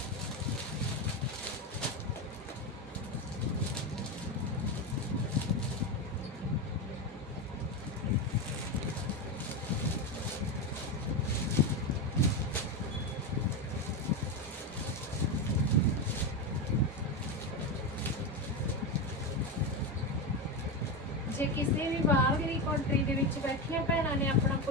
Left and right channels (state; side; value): normal; both; correlation 0.14